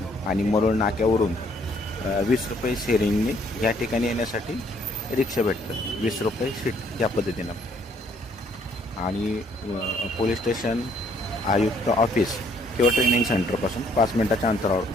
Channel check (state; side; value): normal; both; correlation 0.65